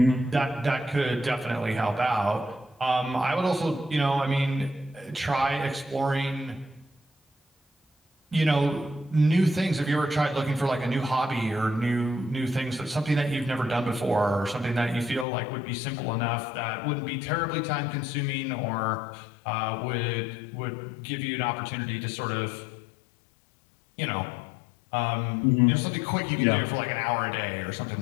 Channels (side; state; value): right; drops out; at 15.2 s